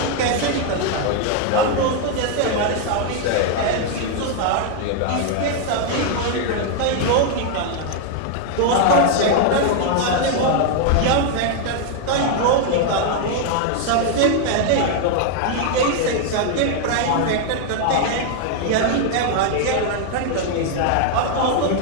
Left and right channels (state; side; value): different; both; correlation 0.00